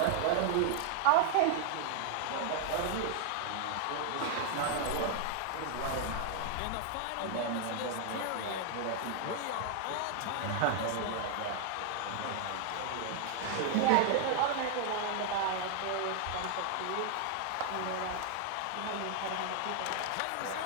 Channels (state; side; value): different; both; correlation 0.00